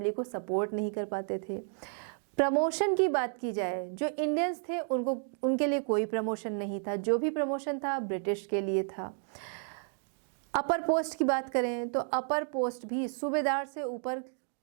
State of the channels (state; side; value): silent; left; 56 dB below the other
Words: को सपोर्ट नहीं कर पाते थे। प्रमोशन की बात की जाए, जो इंडियंस थे उनके लिए कोई प्रमोशन नहीं था, जो भी प्रमोशन था ब्रिटिश के लिए था। अपर पोस्ट की बात करें तो अपर पोस्ट भी सूबेदार से ऊपर